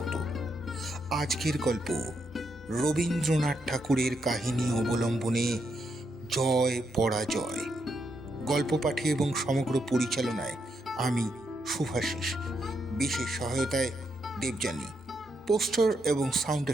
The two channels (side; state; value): both; normal; correlation 0.80